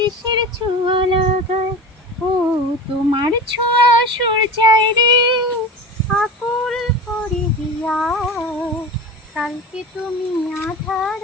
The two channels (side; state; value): both; normal; correlation 0.31